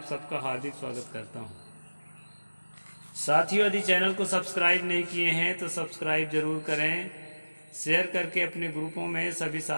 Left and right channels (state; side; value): inverted; both; correlation -1.00